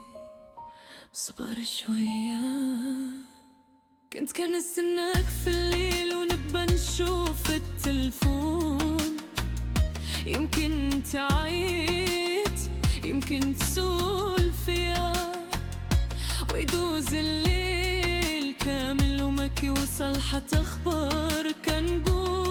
صبر شوية، كنت كنستناك في الليل ونبقى نشوف التلفون. يمكن تعيط، يمكن تسول فيا، ويدوز الليل كامل وما كيوصل حتى اخبار. كنقول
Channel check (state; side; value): identical; both; correlation 1.00